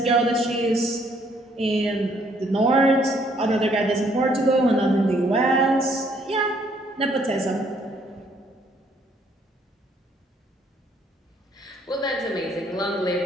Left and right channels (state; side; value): normal; both; correlation 0.66